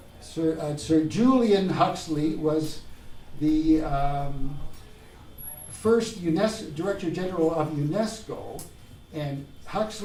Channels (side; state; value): both; identical; correlation 1.00